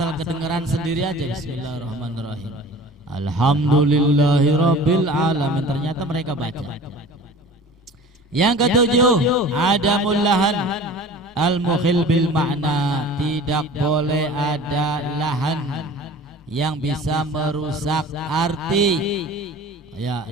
kedengaran sendiri aja, Bismillahirrahmanirrahim, Alhamdulillahi Rabbil Alamin, ternyata mereka baca. Yang ketujuh, adamul lahan al-mukhil bil makna. Tidak boleh ada lahan yang bisa merusak arti. Ya,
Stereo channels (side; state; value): both; normal; correlation 0.42